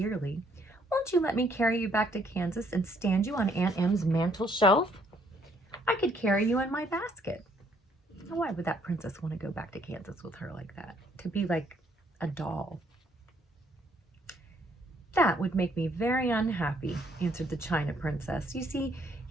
Won't you let me carry you back to Kansas and stand you on Aunt Em's mantel shelf? I could carry you in my basket." Now, why would that princess want to go back to Kansas with her like that? To be like a doll. "That would make me very unhappy," answered the China princess. "You see,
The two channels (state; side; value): normal; both; correlation 0.67